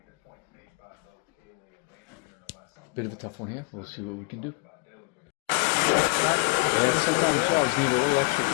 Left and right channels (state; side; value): quieter; right; 30.4 dB